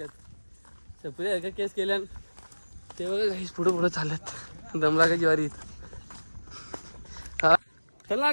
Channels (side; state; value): both; inverted; correlation -1.00